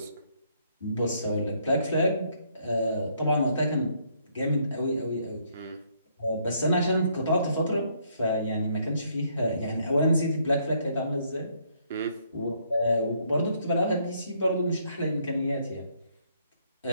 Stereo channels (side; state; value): both; inverted; correlation -0.69